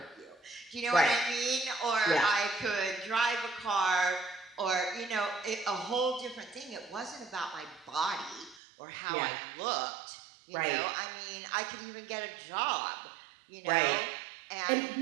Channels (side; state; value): left; drops out; at 8.6 s